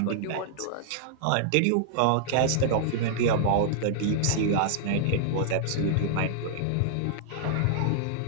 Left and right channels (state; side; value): different; both; correlation -0.01